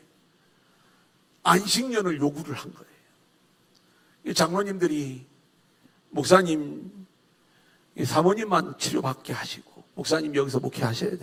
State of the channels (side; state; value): both; identical; correlation 1.00